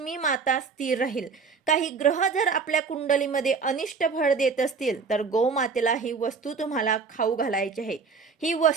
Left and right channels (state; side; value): quieter; left; 5.1 dB